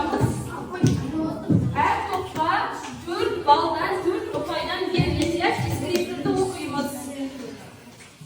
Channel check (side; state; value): both; identical; correlation 1.00